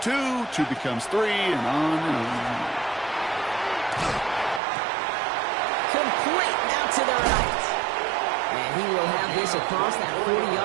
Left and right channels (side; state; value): left; drops out; at 4.6 s